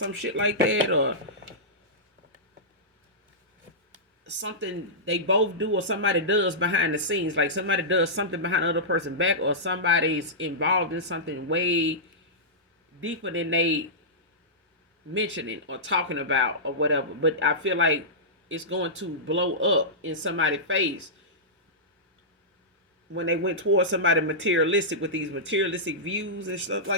shit like that, or something they both do or somebody does behind the scenes. Like somebody does something behind the other person's back, or somebody's involved in something way deeper than they mentioning or talking about or whatever. But I feel like it's going to blow up in somebody's face when they went towards somebody materialistic with these materialistic views and stuff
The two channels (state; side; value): normal; both; correlation -0.16